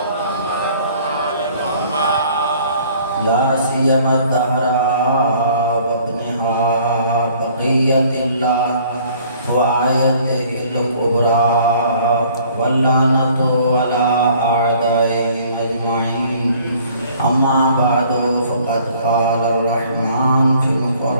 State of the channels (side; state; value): both; inverted; correlation -0.56